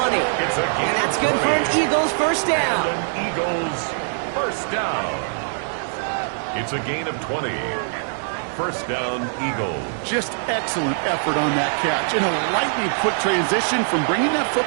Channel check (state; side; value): silent; left; digital silence